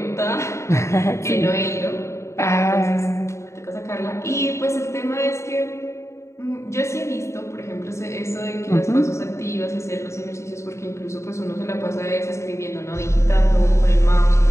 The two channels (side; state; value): right; late; 0.14 ms